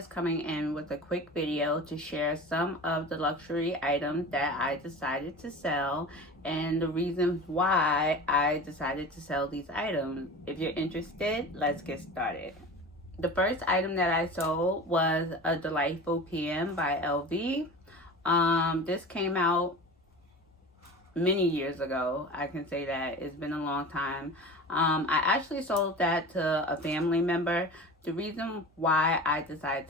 coming in with a quick video to share some of the luxury items that I decided to sell and the reasons why I decided to sell these items. If you're interested, let's get started. The first item that I sold was a Delightful PM by LV. This came out many years ago. I can say that it's been a long time. I actually sold that to a family member. The reason why I decided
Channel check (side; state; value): both; normal; correlation 0.34